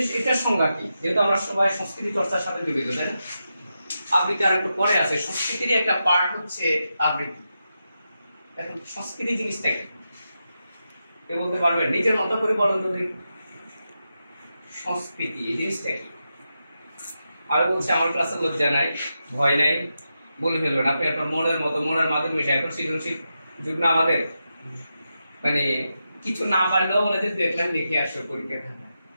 এটার সংজ্ঞা কি? যেহেতু আমরা সবাই সংস্কৃতি চর্চার সাথে জড়িত, তাই না? আবৃত্তি আর একটু পরে আছে, সংস্কৃতির একটা পার্ট হচ্ছে আবৃত্তি। এখন সংস্কৃতি জিনিসটা কি কেউ বলতে পারবেন? নিজের মতো করে বলেন তো দেখি, সংস্কৃতি এই জিনিসটা কি? আর বলছে আমার ক্লাসে লজ্জা নাই, ভয় নাই, বলে ফেলবেন আপনি আপনার মনের মতো, মনের মাধ্যমে মিশে। এখন সৃজনশীল যুগ না আমাদের, মানে কিছু না পারলেও বলে যে দেখলাম লিখে আসো পরীক্ষা খাতা,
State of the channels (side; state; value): both; inverted; correlation -0.88